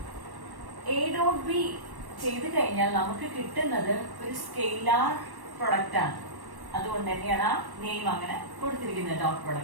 എ ഡോട്ട് ബി ചെയ്ത് കഴിഞ്ഞാൽ നമുക്ക് കിട്ടുന്നത് ഒരു സ്കെയിലാർ പ്രൊഡക്റ്റ് ആണ്. അതുകൊണ്ട് തന്നെയാണ് ആ നെയിം അങ്ങനെ കൊടുത്തിരിക്കുന്നത് ഡോട്ട്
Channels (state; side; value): late; left; 1.1 ms